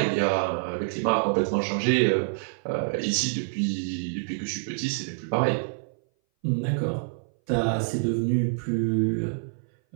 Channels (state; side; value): silent; left; 59 dB below the other